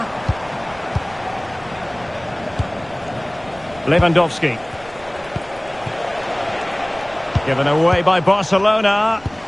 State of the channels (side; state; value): right; noise; rumble, 22 dB below the sound